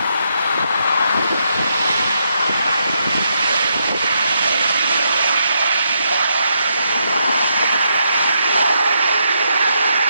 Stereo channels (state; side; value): inverted; both; correlation -0.78